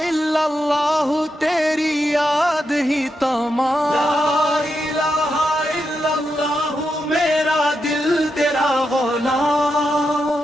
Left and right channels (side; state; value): both; normal; correlation 0.85